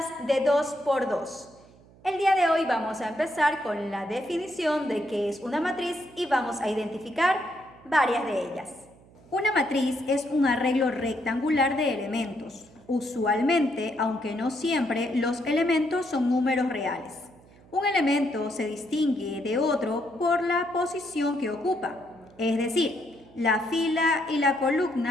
de 2 por 2. El día de hoy vamos a empezar con la definición de qué es una matriz y vamos a identificar varias de ellas. Una matriz es un arreglo rectangular de elementos. Usualmente, aunque no siempre, los elementos son números reales. Un elemento se distingue de otro por la posición que ocupa, es decir, la fila y la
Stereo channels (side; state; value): right; noise; hum, 26 dB below the sound